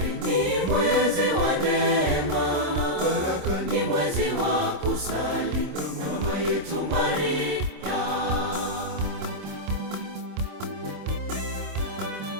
ni mwezi wa neema, baraka ni mwezi wa kusali mama yetu Maria.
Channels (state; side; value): late; left; 26 ms